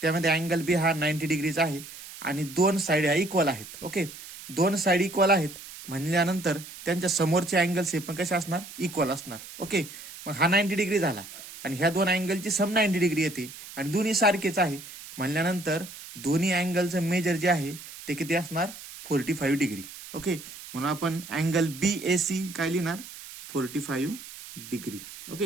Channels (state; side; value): noise; right; hiss, 14 dB below the sound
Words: त्यामध्ये अँगल बी हा 90 डिग्रीचा आहे आणि दोन साईड ह्या इक्वल आहेत. ओके, दोन साईड इक्वल आहेत म्हणल्यानंतर त्यांच्या समोरचे अँगल्स हे पण कसे असणार, इक्वल असणार. ओके, मग हा 90 डिग्री झाला आणि ह्या दोन अँगलची सम 90 डिग्री येते आणि दोन्ही सारखेच आहे म्हणल्यानंतर दोन्ही अँगलचं मेजर जे आहे ते किती असणार, 45 डिग्री. ओके, म्हणून आपण अँगल बी ए सी काय लिहिणार, 45 डिग्री.